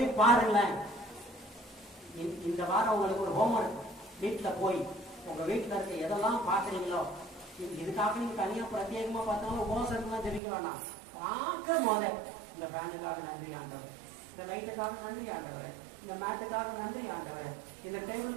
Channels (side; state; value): left; drops out; at 10.4 s